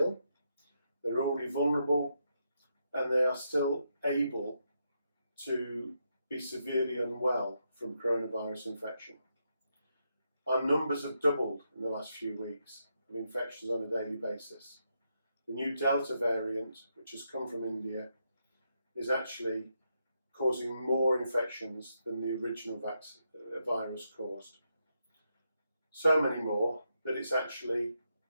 they're already vulnerable, and they are still able to be severely unwell from coronavirus infection. Our numbers have doubled in the last few weeks of infections on a daily basis. The new Delta variant, which has come from India, is actually causing more infections than the original virus caused. So many more that it's actually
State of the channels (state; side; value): inverted; both; correlation -0.81